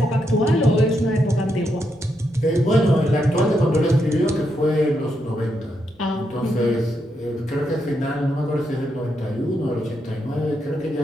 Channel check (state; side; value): normal; both; correlation 0.81